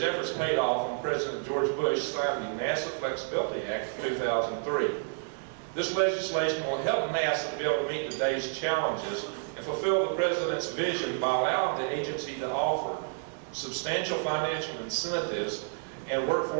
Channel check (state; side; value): silent; left; digital silence